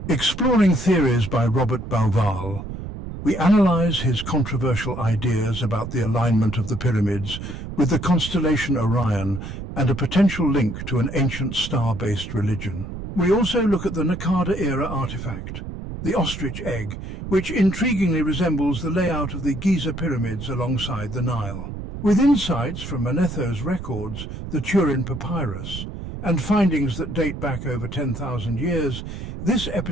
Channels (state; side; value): noise; right; rumble, 8 dB below the sound